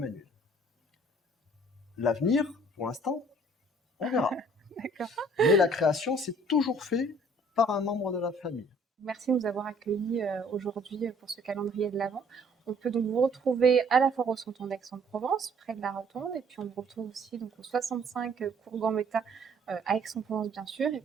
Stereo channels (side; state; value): both; normal; correlation 0.58